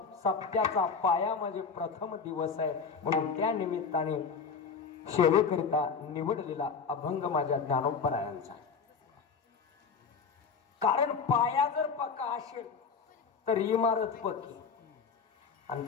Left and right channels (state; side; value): quieter; right; 5.5 dB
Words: सप्त्याचा पाया म्हणजे प्रथम दिवस आहे म्हणून त्या निमित्ताने सेवेकरिता निवडलेला अभंग माझ्या ज्ञानोबरायांचा कारण पाया जर पक्का असेल तर इमारत पक्की आणि